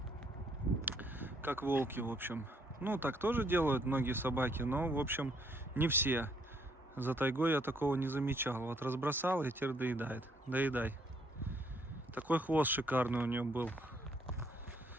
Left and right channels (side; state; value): both; normal; correlation 0.68